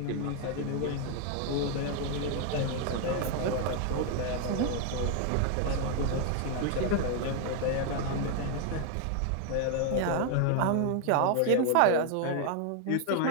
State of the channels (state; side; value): different; both; correlation 0.00